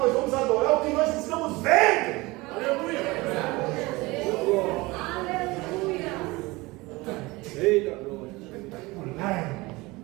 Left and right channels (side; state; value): left; quieter; 22.3 dB